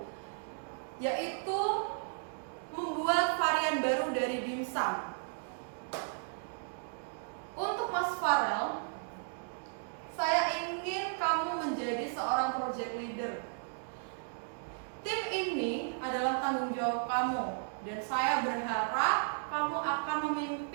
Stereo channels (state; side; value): silent; left; digital silence